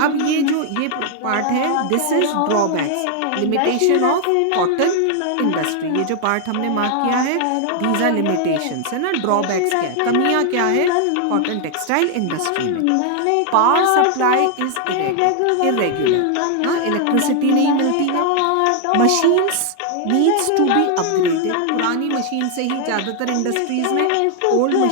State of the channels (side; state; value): both; different; correlation 0.00